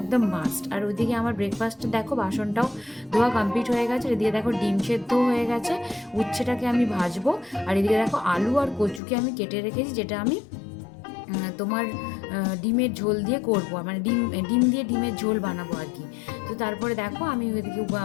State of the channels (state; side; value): drops out; right; at 9.0 s